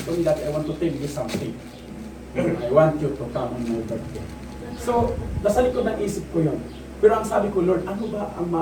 to me, Daddy, I want to tell you something. I want you to come on my birthday. So, nasa likod ng isip ko yun. Pero ang sabi ko, Lord, ano ba ang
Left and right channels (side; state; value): both; identical; correlation 1.00